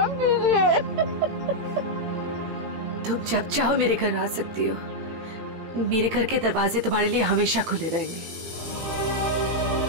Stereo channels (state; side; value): late; left; 18 ms